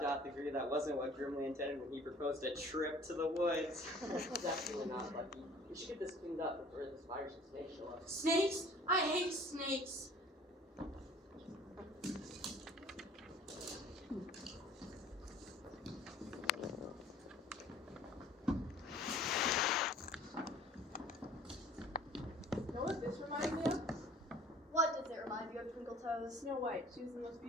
doth agree that wasn't what Grimly intended when he proposed a trip to the woods. Definitely not, Lucky. We should get this cleaned up before the spiders and snakes show up. Snakes? I hate snakes. Know what this reminds me of? What does it remind you of, Twinkle Toes? Snow White. She was the most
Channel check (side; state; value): both; normal; correlation 0.51